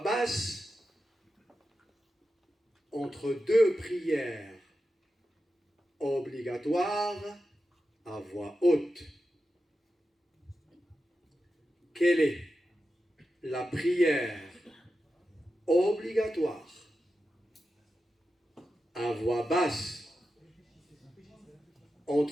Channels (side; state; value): both; normal; correlation 0.91